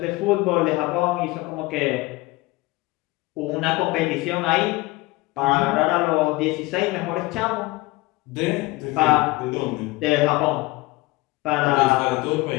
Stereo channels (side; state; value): right; quieter; 21.3 dB